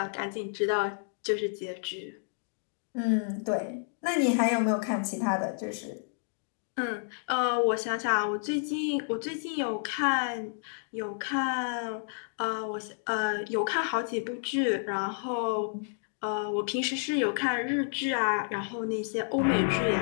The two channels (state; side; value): silent; right; digital silence